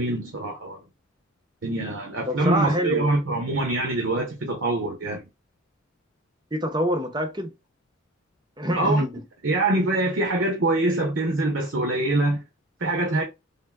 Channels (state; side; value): normal; both; correlation 0.37